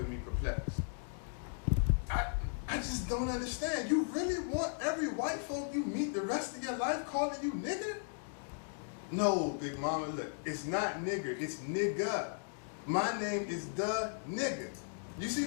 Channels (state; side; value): silent; right; digital silence